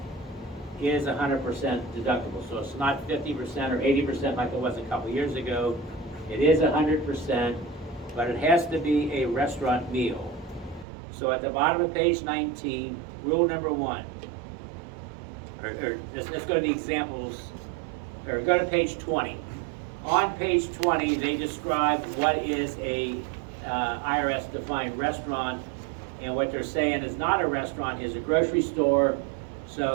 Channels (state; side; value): drops out; left; at 10.9 s